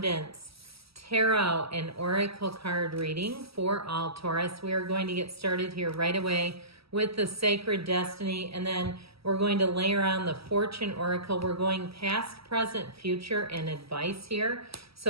tarot and oracle card reading for all Taurus. We are going to get started here right away with the Sacred Destiny, and then we're going to layer on the Fortune Oracle. We're going past, present, future, and advice here.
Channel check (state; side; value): late; left; 0.76 ms